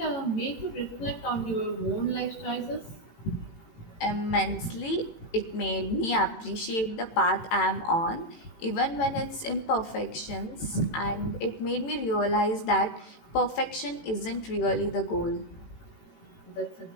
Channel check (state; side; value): late; right; 18 ms